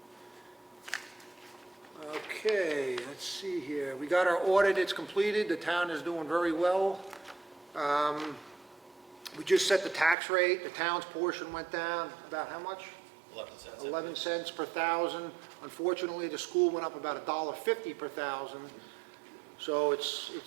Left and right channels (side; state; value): left; drops out; at 10.2 s